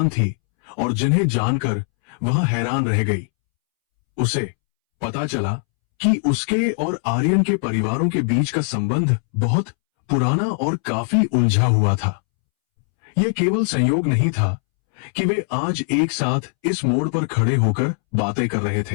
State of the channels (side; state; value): right; silent; 65 dB below the other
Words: थी और जिन्हें जानकर वह हैरान रह गई। उसे पता चला कि उसके और आर्यन के परिवारों के बीच का संबंध बहुत पुराना और काफी उलझा हुआ था। यह केवल संयोग नहीं था कि वे आज एक साथ इस मोड़ पर खड़े होकर बातें कर रहे